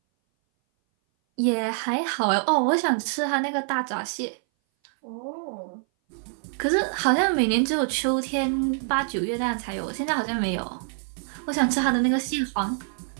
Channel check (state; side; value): silent; left; 59 dB below the other